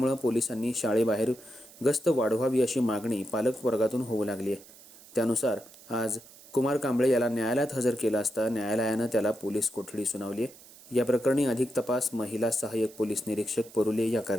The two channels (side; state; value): right; noise; hiss, 21 dB below the sound